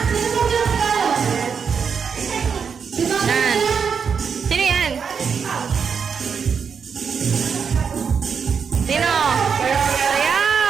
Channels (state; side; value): quieter; left; 6.4 dB